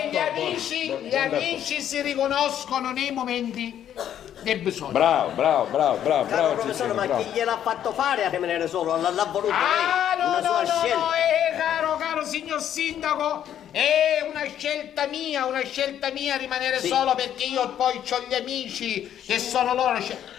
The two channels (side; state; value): right; quieter; 10.3 dB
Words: gli amici si riconoscono nei momenti del bisogno. Bravo, Caro professore, ma chi gliel'ha fatto fare a rimanere solo? L'ha voluto lei? Una sua scelta? Caro signor sindaco, è una scelta mia rimanere solo, perché io poi ho gli amici che sono loro. Ce